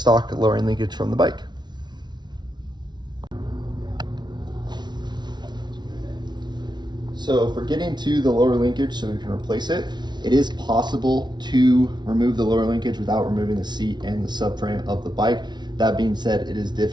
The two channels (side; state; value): left; late; 0.20 ms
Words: lowering linkage from the bike. So for getting to the lower linkage so we can replace it, it is possible to remove the lower linkage without removing the seat and the subframe of the bike. That being said, it is